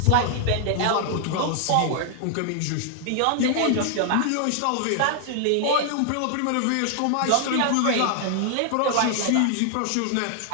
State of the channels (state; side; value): different; both; correlation 0.00